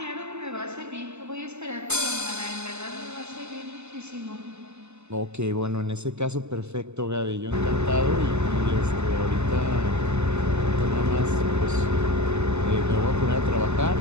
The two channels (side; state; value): left; late; 0.82 ms